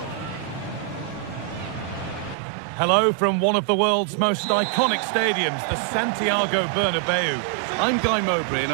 Hello from one of the world's most iconic stadiums, the Santiago Bernabeu. I'm Guy Mowbray, and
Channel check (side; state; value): left; drops out; at 2.4 s